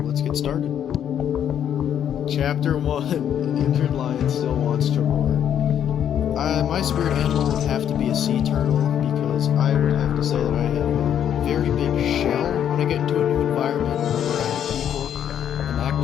let's get started. Chapter 1, An Injured Lion Still Wants to Roar. My spirit animal would have to be a sea turtle, because I would have to say that I have a very big shell when I get into a new environment around people, and act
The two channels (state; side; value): quieter; right; 9.5 dB